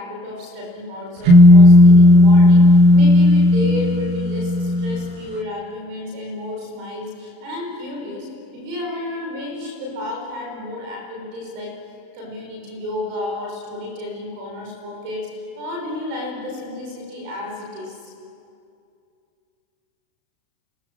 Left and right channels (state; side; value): late; left; 35 ms